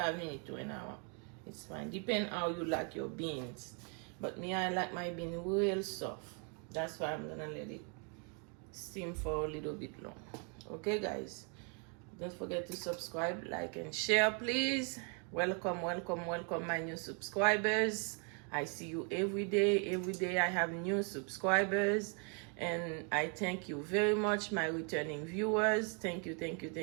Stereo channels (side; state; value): left; quieter; 38.5 dB